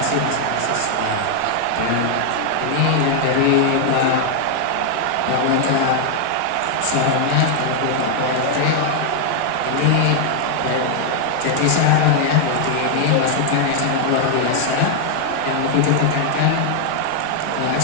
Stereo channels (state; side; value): different; both; correlation 0.00